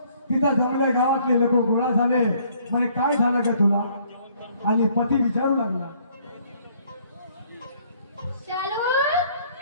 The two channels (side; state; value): both; inverted; correlation -0.62